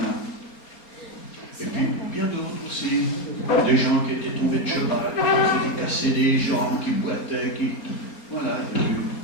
Et puis, bien d'autres aussi. Des gens qui étaient tombés de cheval, qui s'étaient cassés des jambes, qui boitaient, qui... Voilà,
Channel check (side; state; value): right; late; 4.3 ms